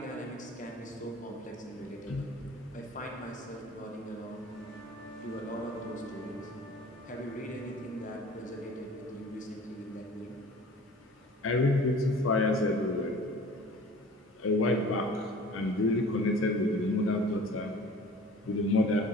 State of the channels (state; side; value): normal; both; correlation 0.45